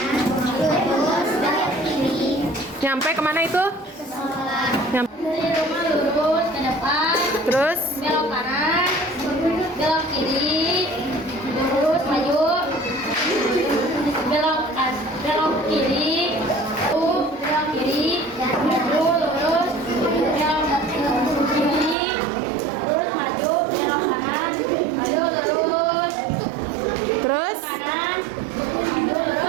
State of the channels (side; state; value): left; drops out; at 22.0 s